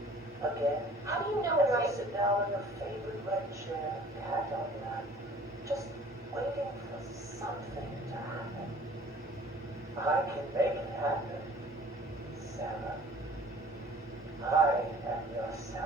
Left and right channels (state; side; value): normal; both; correlation 0.50